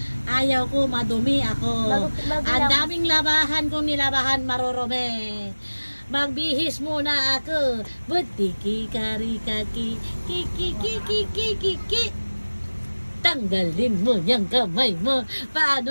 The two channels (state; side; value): inverted; both; correlation -1.00